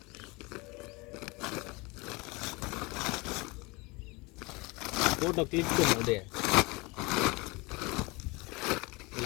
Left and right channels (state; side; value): quieter; right; 25.4 dB